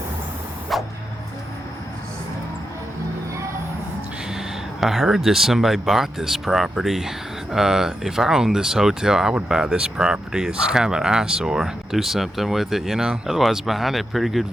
I heard that somebody bought this property. If I owned this hotel, I would buy this property. It's kind of an eyesore. Do something with it, you know? Otherwise, behind it, pretty good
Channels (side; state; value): both; normal; correlation 0.87